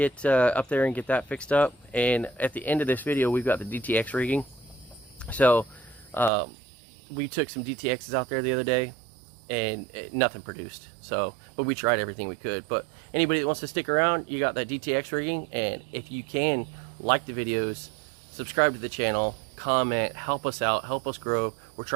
up there and get that fixed up. And at the end of this video, we've got the DTX rigging. So we took some DTXs out there the other day, and nothing produced. So, but we tried everything we could. But anybody that wants to stick around, you got that DTX rigging. And if you can, like the videos, subscribe to the channel, comment, help us out, help us grow. We're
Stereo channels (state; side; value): drops out; left; at 6.3 s